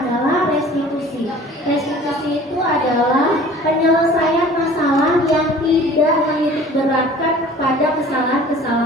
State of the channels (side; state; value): both; normal; correlation 0.47